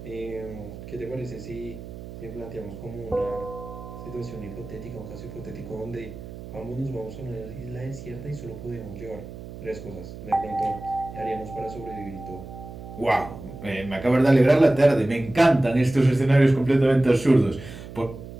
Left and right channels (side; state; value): right; noise; hum, 13 dB below the sound